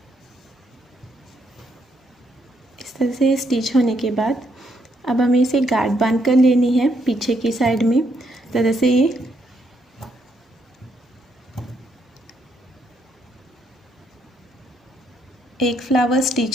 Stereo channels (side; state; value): both; normal; correlation 0.74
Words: इस तरह से स्टिच होने के बाद अब हमें इसे गांठ बांध कर लेनी है पीछे की साइड में। तरह से ये एक फ्लावर